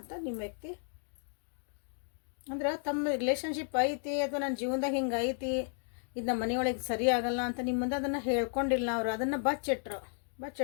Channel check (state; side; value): silent; right; 55 dB below the other